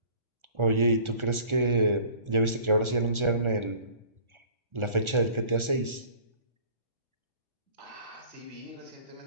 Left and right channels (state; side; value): late; left; 1.4 ms